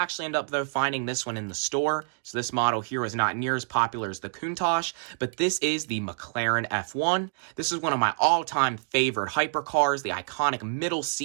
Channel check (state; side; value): silent; left; 60 dB below the other